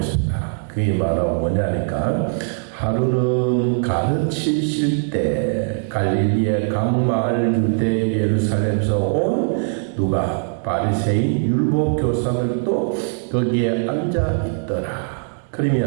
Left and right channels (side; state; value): left; silent; digital silence